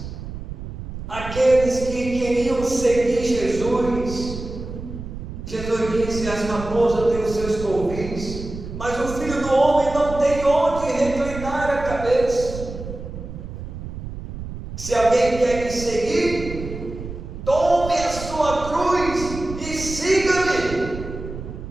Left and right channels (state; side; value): noise; right; rumble, 9 dB below the sound